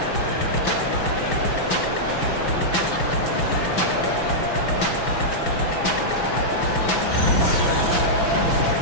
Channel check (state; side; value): late; right; 6.0 ms